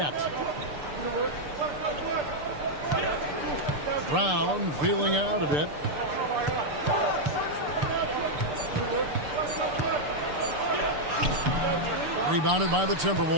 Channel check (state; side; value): late; left; 6.8 ms